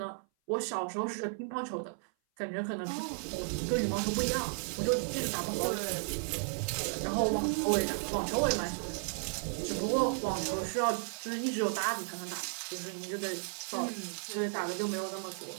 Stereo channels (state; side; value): silent; left; 55 dB below the other